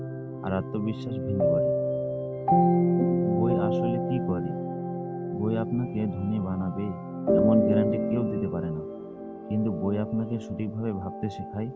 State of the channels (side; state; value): both; identical; correlation 1.00